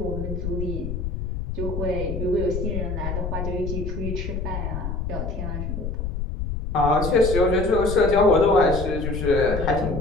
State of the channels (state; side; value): noise; left; rumble, 4 dB below the sound